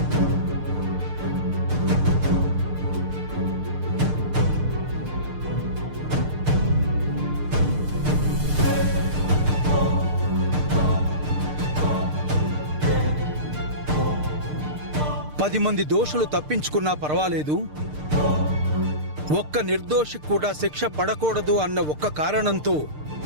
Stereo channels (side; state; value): left; late; 6.6 ms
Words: పది మంది దోషులు తప్పించుకున్నా పర్వాలేదు, ఒక్క నిర్దోషి కూడా శిక్ష పడకూడదు అన్న ఒక్క కారణంతో